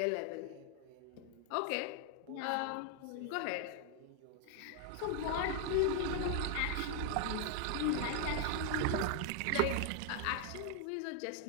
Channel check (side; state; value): both; different; correlation 0.00